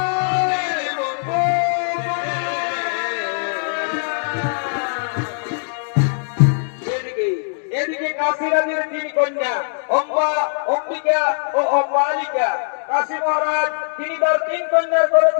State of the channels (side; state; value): right; silent; digital silence